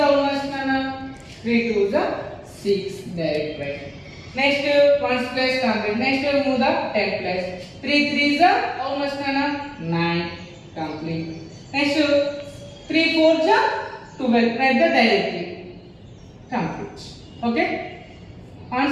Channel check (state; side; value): identical; both; correlation 1.00